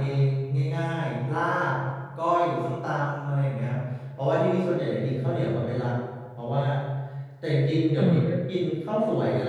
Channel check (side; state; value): both; identical; correlation 1.00